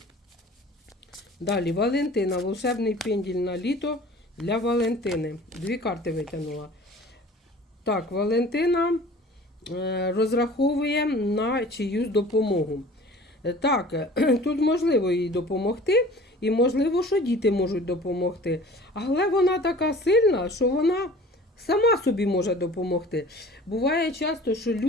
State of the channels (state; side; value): normal; both; correlation 0.45